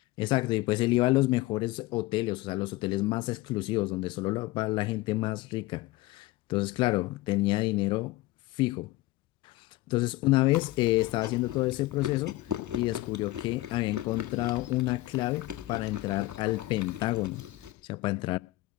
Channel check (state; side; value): quieter; right; 19.0 dB